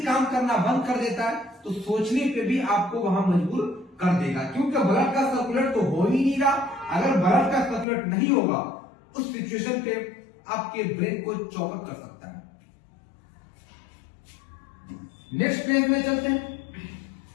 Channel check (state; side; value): drops out; right; at 7.9 s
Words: काम करना बंद कर देता है तो सोचने पे भी आपको वहां मजबूर कर देगा, क्योंकि ब्लड का सर्कुलेट तो हो ही नहीं रहा। अगर ब्लड का सर्कुलेट नहीं होगा उस सिचुएशन पे आपके ब्रेन को चौपट कर सकता है। नेक्स्ट पेज में चलते हैं।